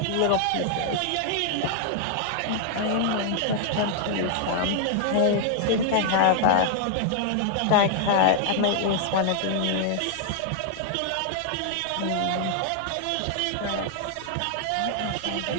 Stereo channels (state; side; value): different; both; correlation 0.00